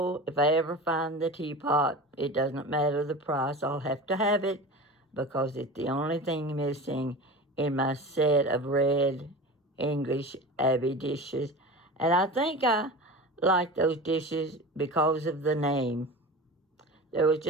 if I ever find the teapot, it doesn't matter the price. I'll have to have it because it's the only thing missing in my set of red English Abbey dishes. And I think I like those dishes because of the name. There was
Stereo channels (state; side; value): normal; both; correlation 0.32